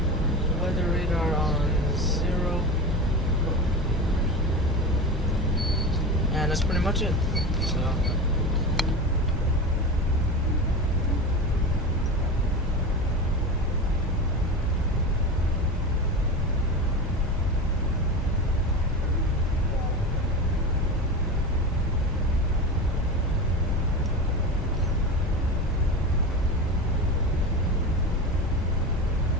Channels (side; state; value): both; normal; correlation 0.25